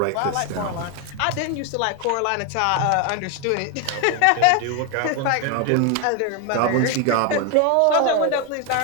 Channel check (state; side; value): different; both; correlation 0.01